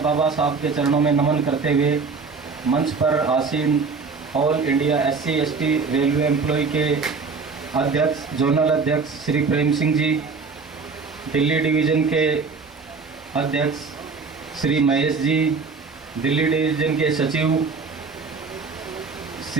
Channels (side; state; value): left; quieter; 4.8 dB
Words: बाबा साहब के चरणों में नमन करते हुए मंच पर आसीन all India SC/ST railway employ के अध्यक्ष, जोनल अध्यक्ष श्री प्रेम सिंह जी, दिल्ली डिवीज़न के अध्यक्ष श्री महेश जी, दिल्ली डिवीज़न के सचिव